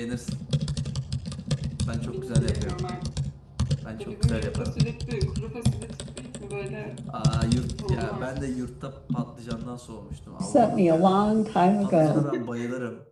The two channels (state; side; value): identical; both; correlation 1.00